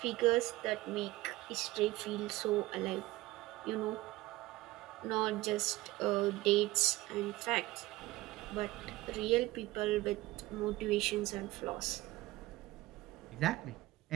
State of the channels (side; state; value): left; quieter; 18.5 dB